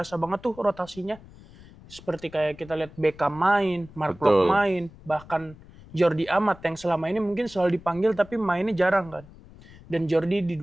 banget tuh rotasinya. Seperti kayak kita lihat Beckham main, Mark Locke main, bahkan Jordi Amat yang selama ini mungkin selalu dipanggil tapi mainnya jarang kan. Dan Jordi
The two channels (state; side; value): noise; left; rumble, 21 dB below the sound